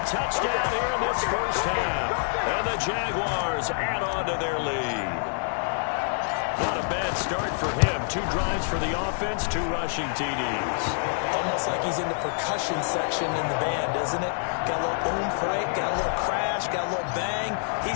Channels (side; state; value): right; silent; 60 dB below the other